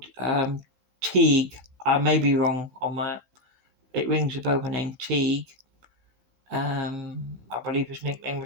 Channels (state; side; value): late; left; 15 ms